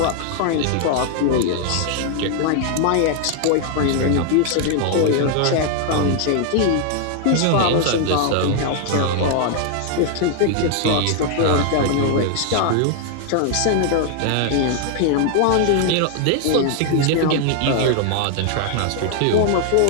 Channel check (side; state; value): both; different; correlation 0.00